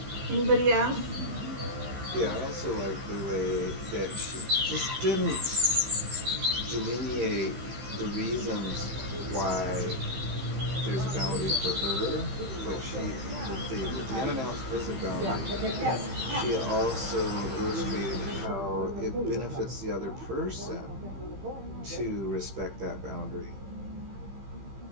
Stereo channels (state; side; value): late; left; 15 ms